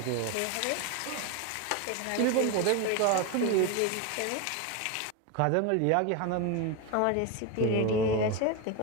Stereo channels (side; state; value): both; different; correlation 0.02